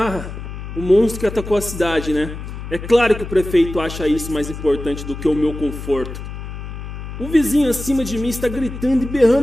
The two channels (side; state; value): left; noise; hum, 9 dB below the sound